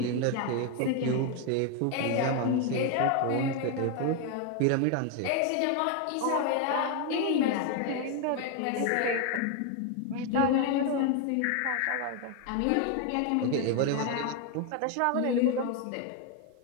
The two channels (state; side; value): different; both; correlation 0.01